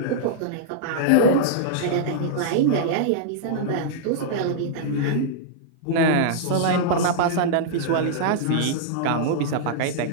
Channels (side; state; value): both; different; correlation -0.02